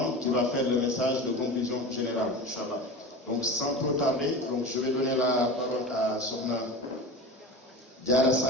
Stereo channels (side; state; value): both; normal; correlation 0.30